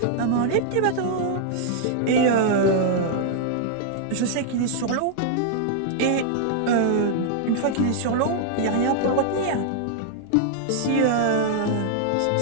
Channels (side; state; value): both; different; correlation -0.01